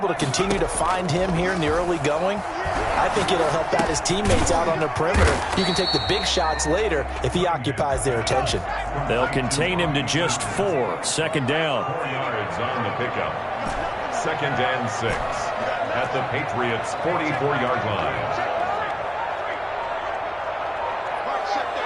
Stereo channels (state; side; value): identical; both; correlation 1.00